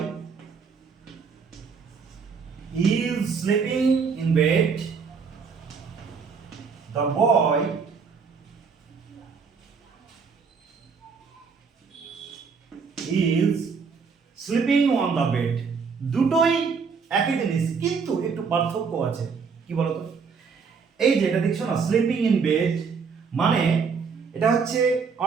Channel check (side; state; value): left; quieter; 5.5 dB